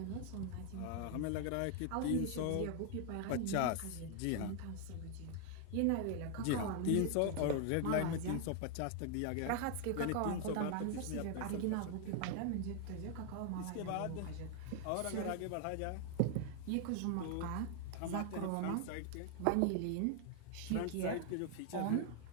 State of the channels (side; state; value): both; different; correlation 0.00